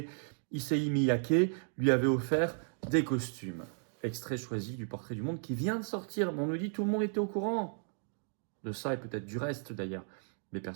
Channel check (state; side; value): silent; left; 55 dB below the other